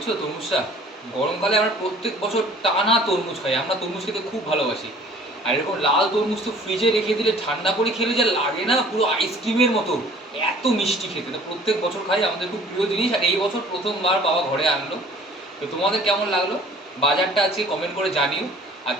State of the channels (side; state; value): both; normal; correlation 0.51